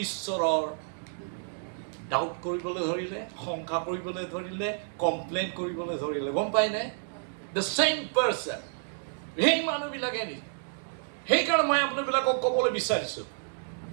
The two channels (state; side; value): silent; left; digital silence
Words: ঈশ্বৰৰ ডাউট কৰিবলৈ ধৰিলে, শংকা কৰিবলৈ ধৰিলে, কমপ্লেইন কৰিবলৈ ধৰিলে, গম পায়নে? দ্য চেম পাৰ্চন, সেই মানুহবিলাকে নি। সেইকাৰণে মই আপোনাবিলাকক ক'বলৈ বিচাৰিছোঁ,